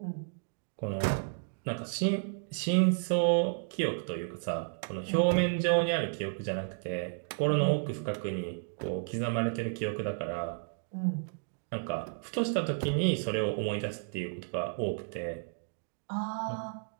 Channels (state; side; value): silent; left; digital silence